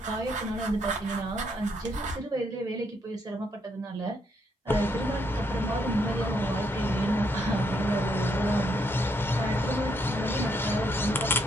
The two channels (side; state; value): both; normal; correlation 0.74